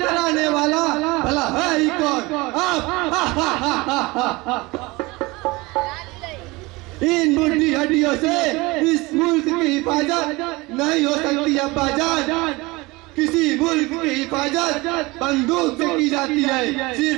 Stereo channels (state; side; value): quieter; left; 23.0 dB